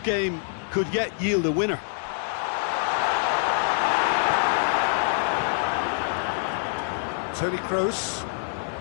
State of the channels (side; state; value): right; silent; 61 dB below the other